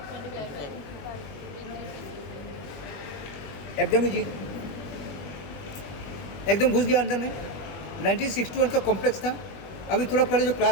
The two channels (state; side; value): late; right; 21 ms